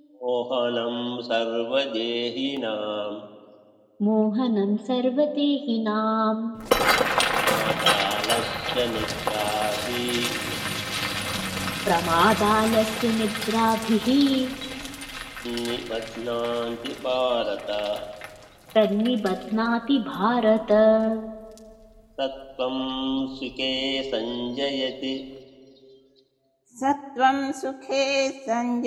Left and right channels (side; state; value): both; identical; correlation 1.00